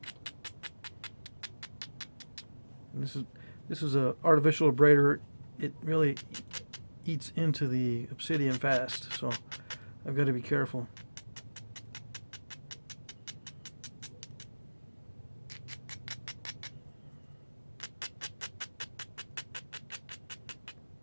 And this is a artificial abrader. It really eats into the obsidian fast, so I've got to be careful.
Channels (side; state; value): both; inverted; correlation -1.00